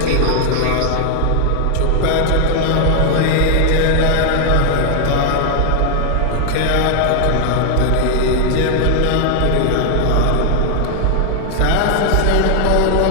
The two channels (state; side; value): different; both; correlation 0.00